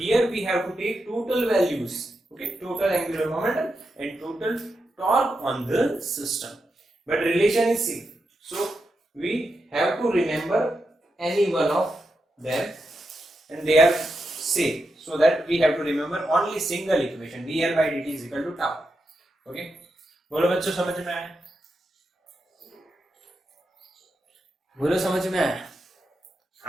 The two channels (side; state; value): both; normal; correlation 0.86